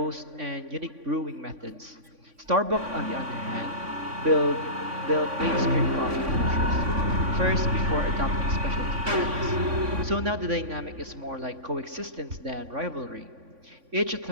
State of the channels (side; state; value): left; late; 3.5 ms